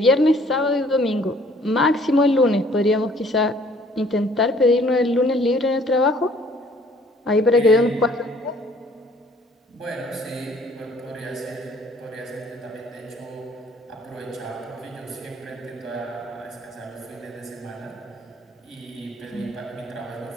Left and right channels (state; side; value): normal; both; correlation 0.58